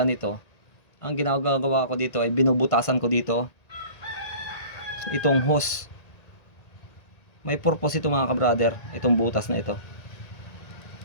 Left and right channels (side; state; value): right; late; 1.9 ms